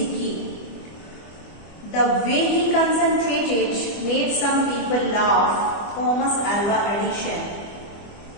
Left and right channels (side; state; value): right; late; 25 ms